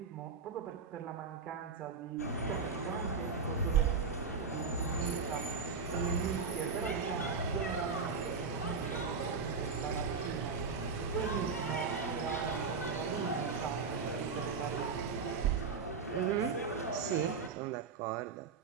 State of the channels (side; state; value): left; quieter; 5.1 dB